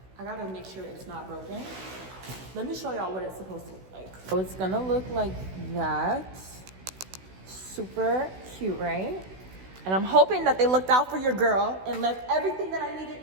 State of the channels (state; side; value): late; left; 16 ms